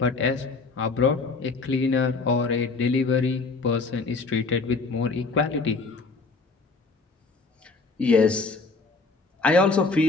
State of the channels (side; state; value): right; quieter; 4.0 dB